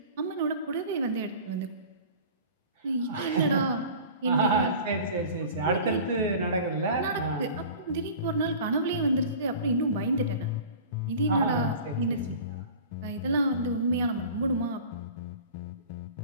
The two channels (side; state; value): both; inverted; correlation -0.40